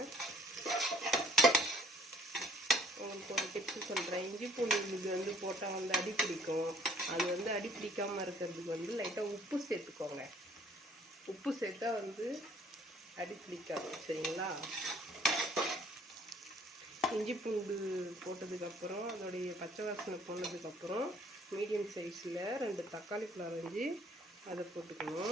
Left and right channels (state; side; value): normal; both; correlation 0.58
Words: உங்களுக்கு ஒரு டிப்ஸு சொல்கிறேன். இஞ்சி பூண்டு விழுது வந்து போட்டால் வந்து அடி பிடிக்கும். அது வந்து அடி பிடிக்காமல் இருக்கிறதுக்கு வந்து லைட்டாக உப்பு சேர்த்துக்கோங்க. உப்பு சேர்த்தா வந்து அடி பிடிக்காது, சரிங்களா? இஞ்சி பூண்டு போட்டதுக்கப்புறம் அதோடைய பச்சை வாசனை போனதுக்கப்புறம் மீடியம் சைஸில் 2 தக்காளி பழம் அரைஞ்சி அதை